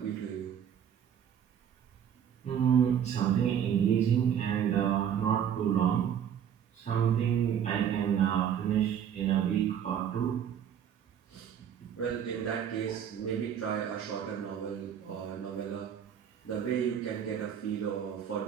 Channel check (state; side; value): quieter; left; 8.8 dB